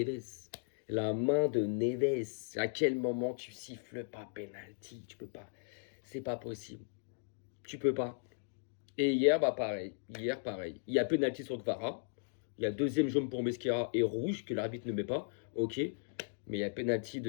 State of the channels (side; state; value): right; silent; digital silence